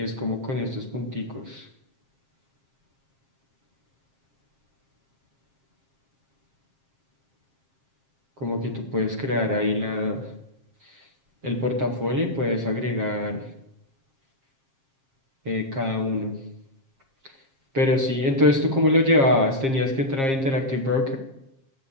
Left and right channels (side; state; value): left; late; 7.4 ms